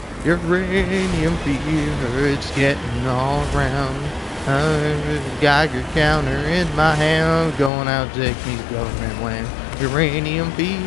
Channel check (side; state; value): right; drops out; at 7.7 s